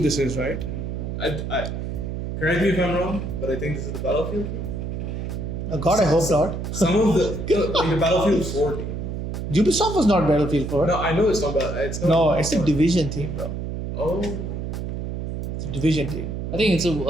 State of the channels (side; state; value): right; noise; hum, 4 dB below the sound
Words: this is, right? I correct me if I'm wrong, but I think this is the Battlefield team. Oh God, I hope not. Some of the Battlefield 4 team. Ubisoft was not Battlefield 4. No, I know it's not bad. It's not. No, it's a Division team, bro. Oh. It's a Division team. I think it's